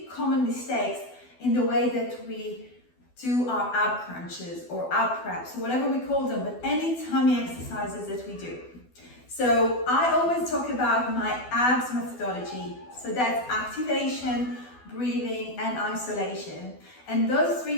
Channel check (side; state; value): right; late; 12 ms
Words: common mistakes in the way that we do our ab crunches or ab preps, whatever we call them, but any tummy exercises that we do. So I always talk about my abs methodology. So that's activation, breathing, and isolation. And those